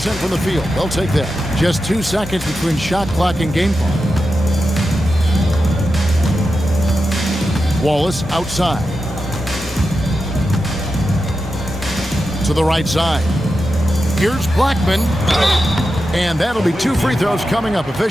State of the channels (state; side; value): normal; both; correlation 0.90